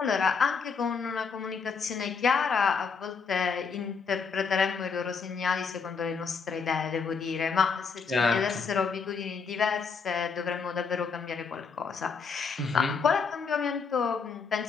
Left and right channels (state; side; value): quieter; right; 5.4 dB